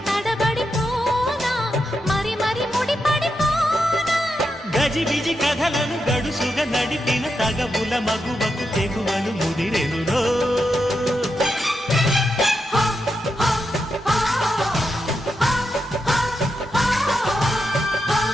తడబడిపోనా మరి మరి ముడిపడిపోనా గజిబిజి కథలను గడుసుగా నడిపిన తగవుల మగువకు తెగువలు ముదిరెనురో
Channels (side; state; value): both; normal; correlation 0.85